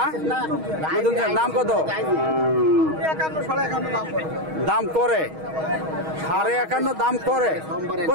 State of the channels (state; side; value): late; left; 6.3 ms